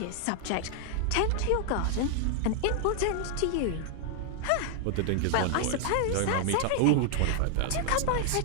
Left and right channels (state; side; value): different; both; correlation 0.00